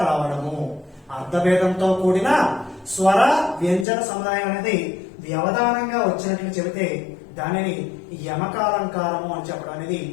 రావడము. అర్థభేదంతో కూడిన స్వర వ్యంజన సముదాయం అనేది వ్యవధానంగా వచ్చినట్లు చెబితే దానిని యమకాలంకారము అని చెప్పడం అనేది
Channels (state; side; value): drops out; right; at 3.9 s